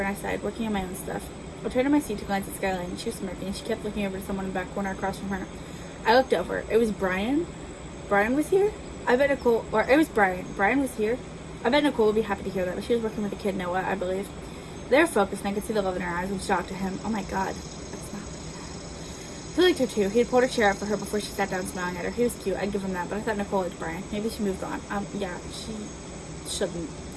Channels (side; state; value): both; identical; correlation 1.00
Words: and I sighed, working on my own stuff. I turned to my seat to glance at Skyline and she was smirking and she kept looking over to someone in the back corner across from her. I looked over. It was Brian. Brian was here? I bet Nicole, or it was Brian. Brian was here? I bet Nicole would be happy to hear that, but she was working with the kid, Noah, I believe. They were focused, and I could see the love in her eyes, which shocked to him. Oh my god. That's not like that. He liked her too. He had pulled her chair up for her before she sat down smiling at her. He was cute, I'd give him that, but I thought Nicole liked Brian. Maybe she moved on. Yeah, she shouldn't.